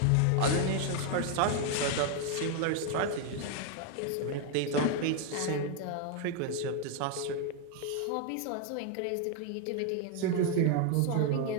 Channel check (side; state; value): both; different; correlation 0.01